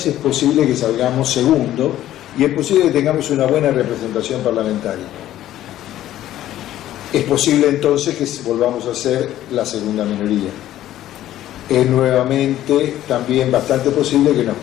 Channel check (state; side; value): quieter; right; 13.2 dB